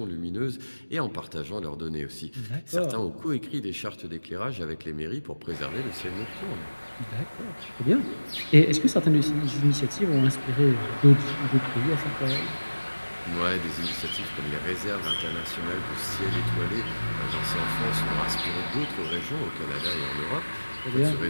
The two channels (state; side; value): inverted; both; correlation -1.00